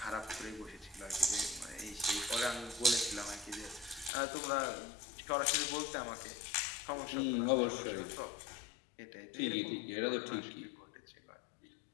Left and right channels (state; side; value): drops out; right; at 4.1 s